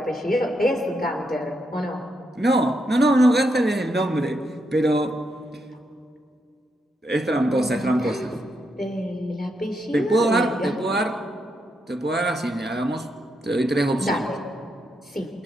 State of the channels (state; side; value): normal; both; correlation 0.81